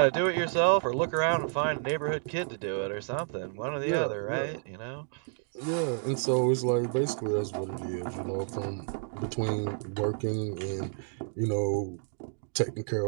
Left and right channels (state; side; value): silent; left; 58 dB below the other